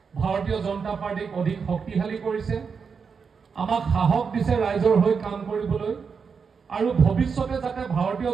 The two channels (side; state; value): left; quieter; 5.8 dB